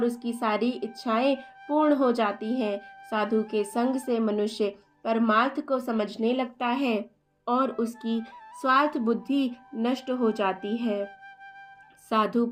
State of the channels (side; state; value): both; identical; correlation 1.00